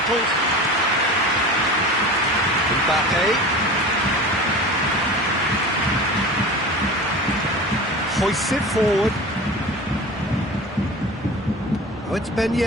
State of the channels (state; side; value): normal; both; correlation 0.35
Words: Mbappe. Hoists it forward. Oh, it's Ben